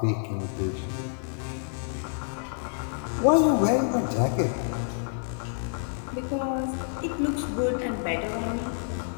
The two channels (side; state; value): right; silent; 59 dB below the other